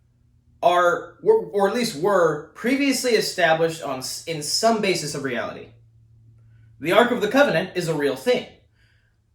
are, or at least were, previously established in some basis of reality. The Ark of the Covenant is a real thing.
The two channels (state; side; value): identical; both; correlation 1.00